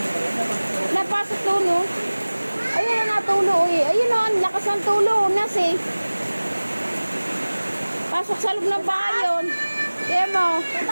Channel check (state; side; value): inverted; both; correlation -1.00